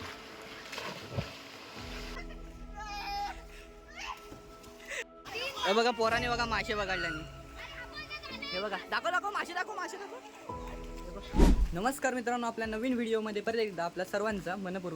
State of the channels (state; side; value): identical; both; correlation 1.00